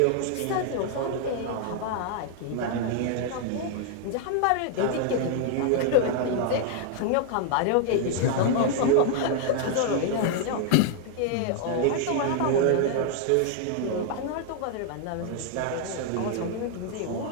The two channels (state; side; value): different; both; correlation 0.00